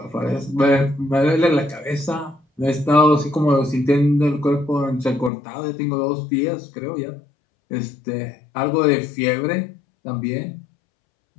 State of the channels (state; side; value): drops out; right; at 5.3 s